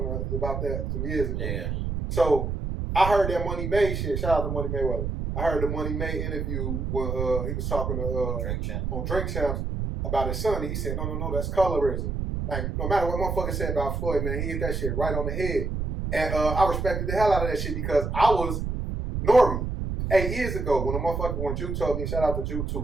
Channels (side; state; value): right; noise; rumble, 2 dB below the sound